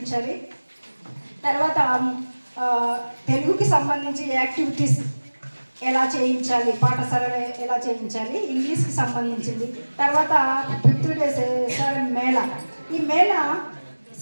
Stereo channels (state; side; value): inverted; both; correlation -1.00